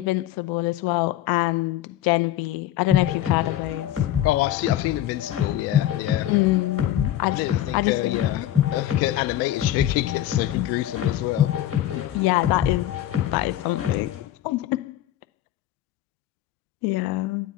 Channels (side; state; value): right; quieter; 12.9 dB